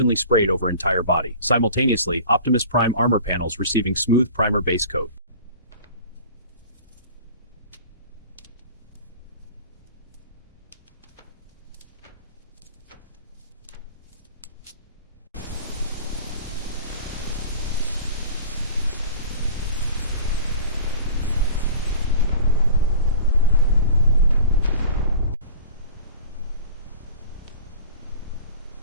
sprayed over entire body. Simultaneously, Optimus Prime armor panels receiving smooth primer base coat.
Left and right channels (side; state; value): both; inverted; correlation -0.40